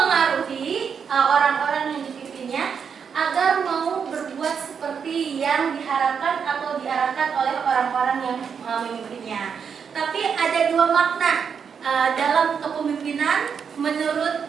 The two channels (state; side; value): quieter; left; 6.7 dB